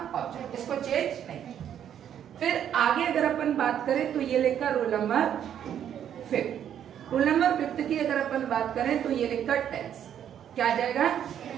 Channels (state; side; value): quieter; left; 9.6 dB